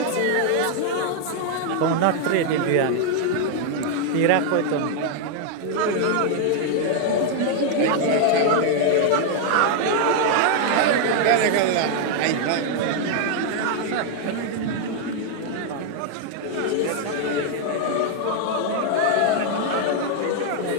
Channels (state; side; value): different; both; correlation 0.00